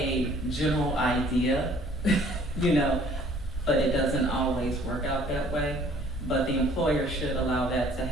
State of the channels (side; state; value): both; normal; correlation 0.56